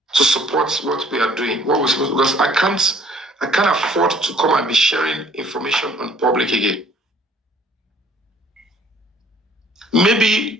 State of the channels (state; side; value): normal; both; correlation 0.57